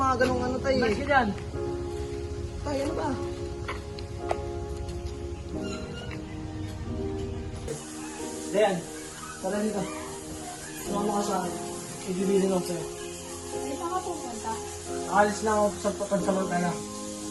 ganung ano, tay? Mas ka dyan. Tay, ano ba? Dayan, tara dito. Sumama ka sa akin. Ibibilin ako sa'yo. Ay, saan ka pupunta? Nakalis lang ako sa pansamantala.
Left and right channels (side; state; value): both; identical; correlation 1.00